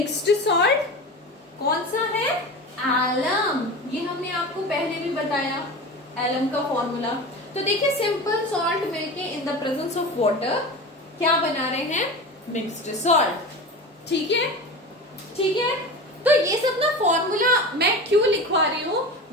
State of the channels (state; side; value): normal; both; correlation 0.30